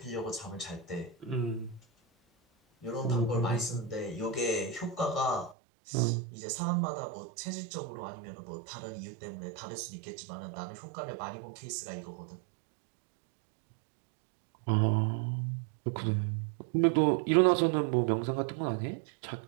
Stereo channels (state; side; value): drops out; left; at 5.6 s